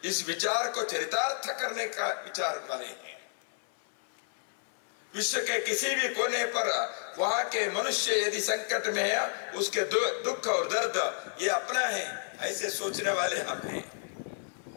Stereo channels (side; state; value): right; silent; 55 dB below the other